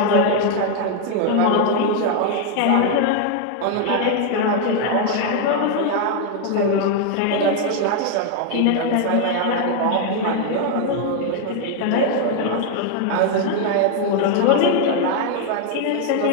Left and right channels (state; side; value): different; both; correlation 0.00